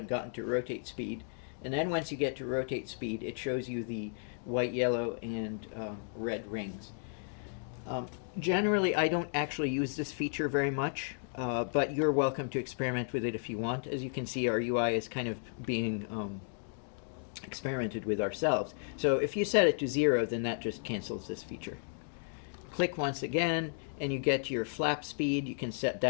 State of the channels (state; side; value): silent; right; digital silence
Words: gotten to rotate speed. And then once you get to rotate speed, it shows you the white, yellow, and red rings. Generally, I don't actually use this feature very much, but you're welcome to experiment with it if you want. As you can see, our UI is kind of being experimented with ourselves. So if you set it to 0, then that just cancels this feature. Click once again, and you get your flap speed. You can set